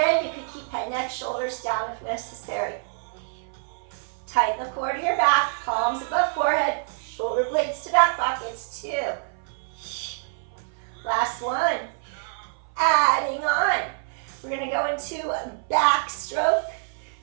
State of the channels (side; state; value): left; silent; 56 dB below the other